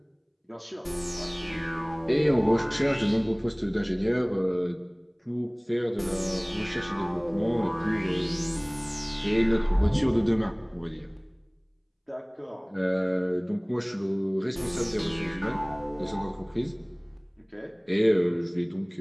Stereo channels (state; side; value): identical; both; correlation 1.00